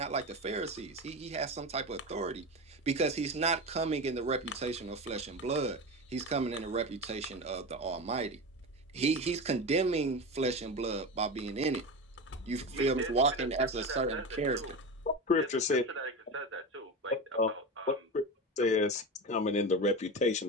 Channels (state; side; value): normal; both; correlation 0.23